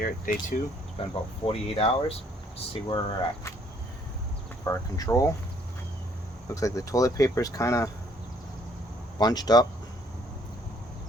at day 2. It's been about 48 hours. Let's see where we're at. For our control, looks like the toilet paper is kind of bunched up.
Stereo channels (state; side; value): normal; both; correlation 0.63